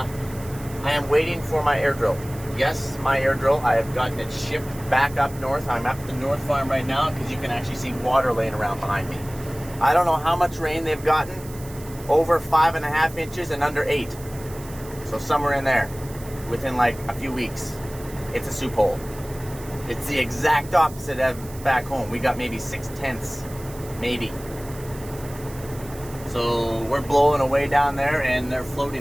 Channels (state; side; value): noise; right; hiss, 18 dB below the sound